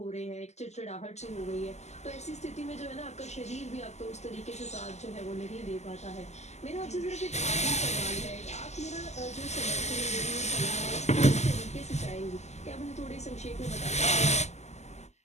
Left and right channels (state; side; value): late; right; 0.33 ms